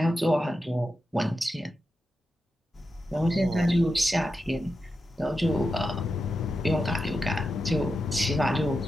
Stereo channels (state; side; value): normal; both; correlation 0.89